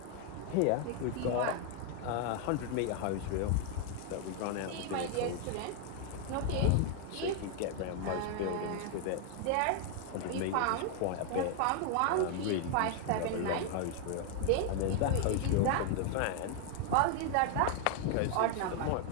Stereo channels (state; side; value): different; both; correlation 0.00